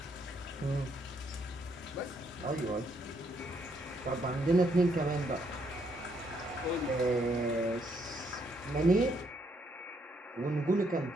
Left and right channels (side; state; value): both; normal; correlation 0.73